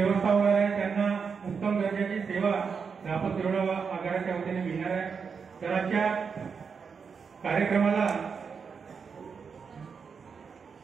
होणार आहे। त्यांना उत्तम दर्जाची सेवा रापत तिरोडा आगाराच्या वतीने मिळणार आहे। तर आजच्या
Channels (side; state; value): left; quieter; 5.9 dB